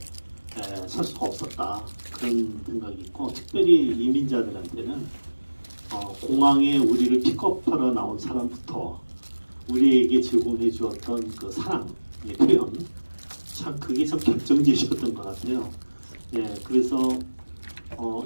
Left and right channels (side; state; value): both; inverted; correlation -1.00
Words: 설 수가 없었다 그런 생각이 있고 특별히 이민자들한테는 공항에 우리를 픽업하러 나온 사람부터 우리에게 제공해 주었던 그 사랑의 표현 참 그게 참 결정적이었던 것 같아요. 네, 그래서